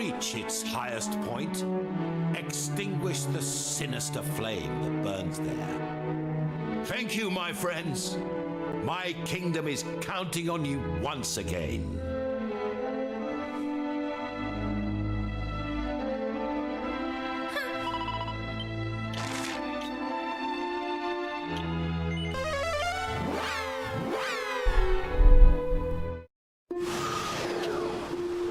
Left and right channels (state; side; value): identical; both; correlation 1.00